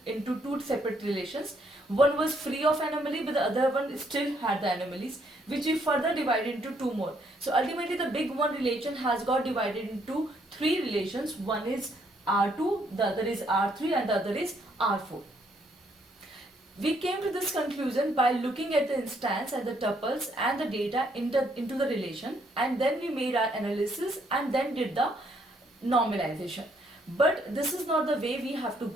into two separate relations. One was free of anomaly, but the other one still had the anomalies, which we further divided into two more. So ultimately the big one relation has got divided into three relations. One is R2, the other is R3, and the other is R4. We came to this conclusion by looking at the instance and the tuples and the data into the relation, and then we made our analysis and then did the normalization. But this is not the way we have to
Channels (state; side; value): normal; both; correlation 0.70